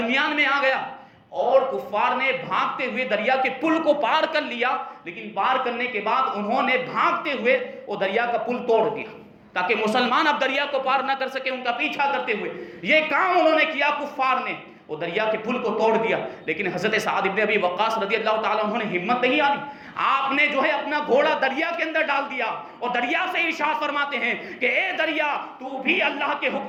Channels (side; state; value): both; identical; correlation 1.00